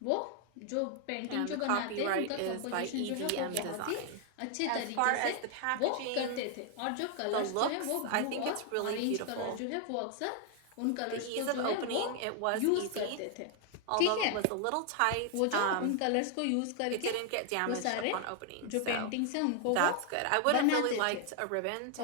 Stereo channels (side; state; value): both; different; correlation 0.00